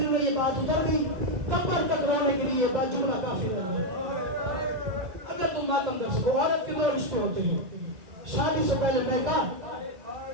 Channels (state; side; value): late; left; 2.4 ms